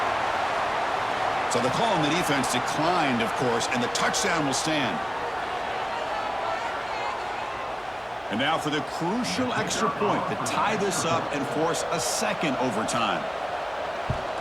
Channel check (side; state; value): both; identical; correlation 1.00